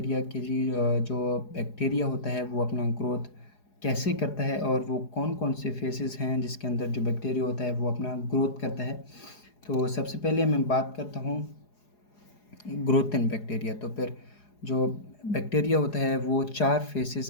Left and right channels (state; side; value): late; right; 4.8 ms